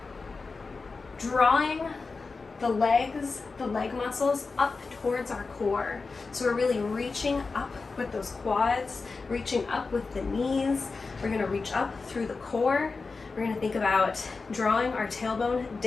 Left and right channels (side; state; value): right; quieter; 4.2 dB